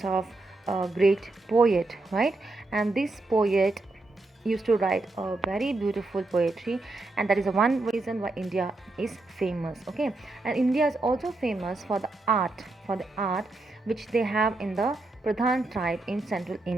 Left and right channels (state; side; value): quieter; left; 3.1 dB